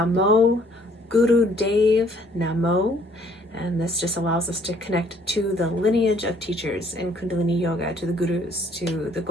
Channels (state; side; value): normal; both; correlation 0.62